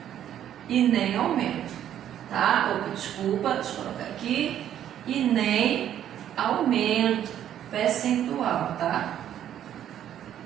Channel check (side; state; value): left; quieter; 10.7 dB